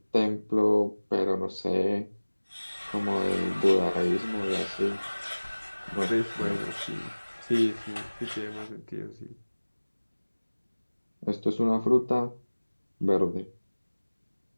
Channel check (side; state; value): both; inverted; correlation -1.00